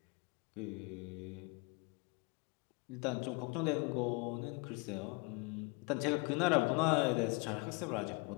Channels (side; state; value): right; quieter; 30.2 dB